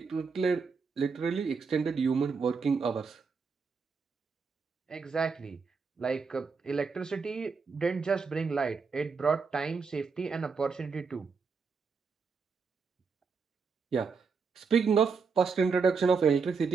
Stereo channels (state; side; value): quieter; left; 5.2 dB